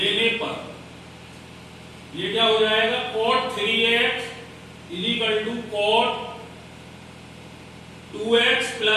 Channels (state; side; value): identical; both; correlation 1.00